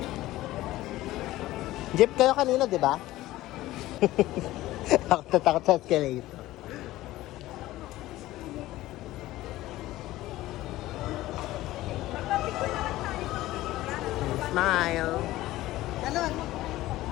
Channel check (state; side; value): quieter; right; 16.5 dB